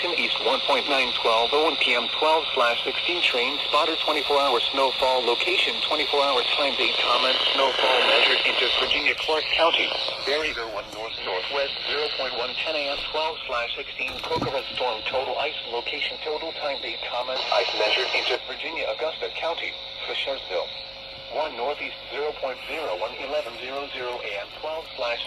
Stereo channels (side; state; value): right; noise; hum, 25 dB below the sound